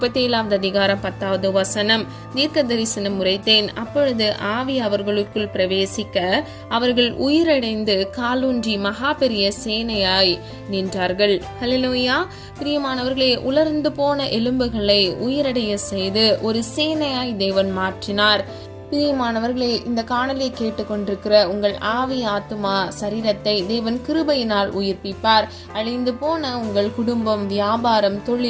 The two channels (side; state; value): both; identical; correlation 1.00